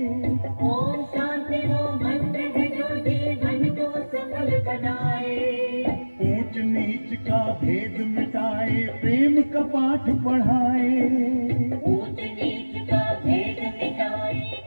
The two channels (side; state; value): both; inverted; correlation -1.00